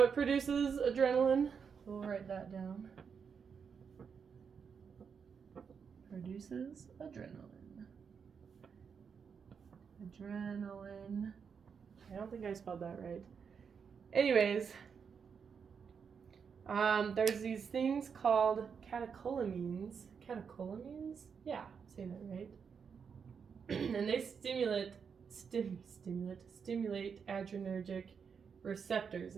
it produces adrenaline. We'll write that down. Produces adrenaline. Adrenaline. I don't think I spelled that right. Anyways, there's these things called catecholamines. Catecholamines? Yeah, I'm saying that right. And they stimulate adrenergic receptors,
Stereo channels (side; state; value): left; quieter; 6.4 dB